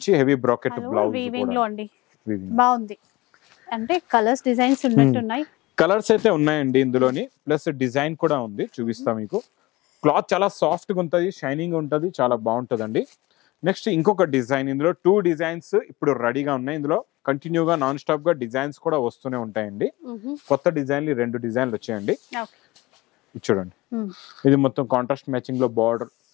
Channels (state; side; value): quieter; right; 20.3 dB